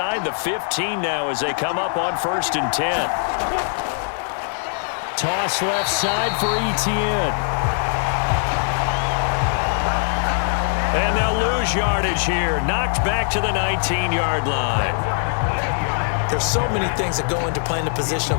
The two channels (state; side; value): silent; right; 65 dB below the other